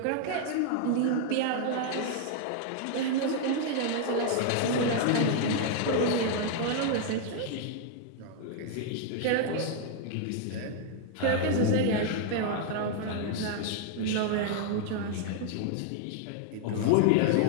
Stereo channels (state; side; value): different; both; correlation 0.00